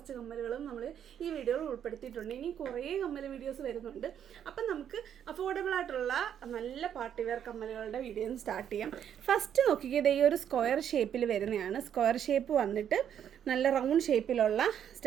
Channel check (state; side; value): quieter; left; 9.2 dB